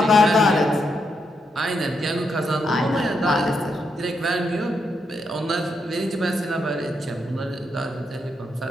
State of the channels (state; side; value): normal; both; correlation 0.81